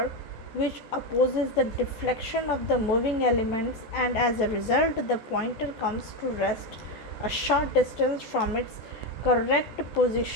which opposes the deflection of the moving elements, and as a result the pointer comes to rest a short distance from its correct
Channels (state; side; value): late; right; 14 ms